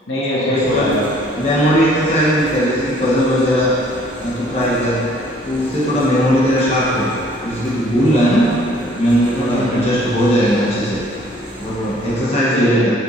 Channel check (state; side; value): normal; both; correlation 0.58